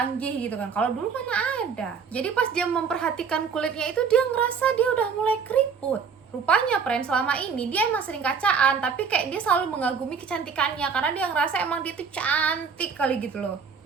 gitu kan. Kalau dulu mana ada. Jadi pas dia memperhatikan kulitnya itu, dia ngerasa dia udah mulai keriput. Rupanya, friend, selama ini dia emang sering kacaan, tapi kayak dia selalu mengagumi kecantikannya karena dia ngerasa emang dia tuh cantik kali gitu loh.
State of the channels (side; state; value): left; quieter; 6.1 dB